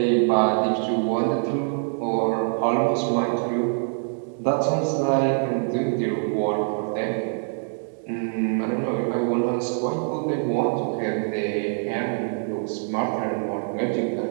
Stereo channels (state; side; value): silent; left; 62 dB below the other